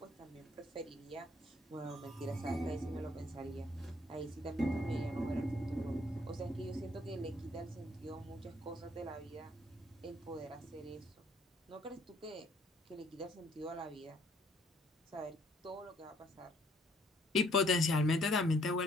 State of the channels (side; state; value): both; normal; correlation 0.64